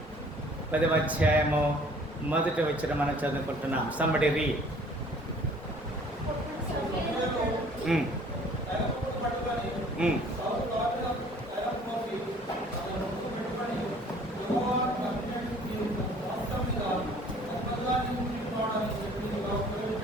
10వ అధ్యాయము 1వ వచనం మనం చదువుకుంటున్నాం. Somebody read.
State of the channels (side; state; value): both; normal; correlation 0.54